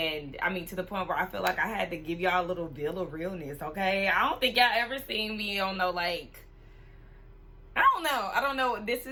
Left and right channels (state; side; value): identical; both; correlation 1.00